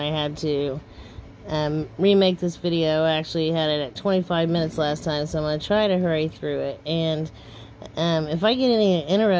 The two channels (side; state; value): both; identical; correlation 1.00